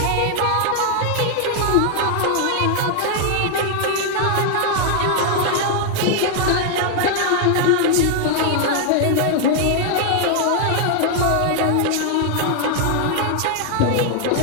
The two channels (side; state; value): both; different; correlation 0.00